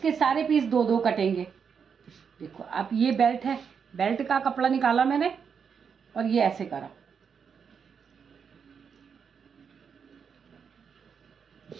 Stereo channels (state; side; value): quieter; left; 6.6 dB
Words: सारे पीस 2-2 कटेंगे। देखो अब ये बेल्ट है, बेल्ट का कपड़ा निकाला मैंने और ये ऐसे करा।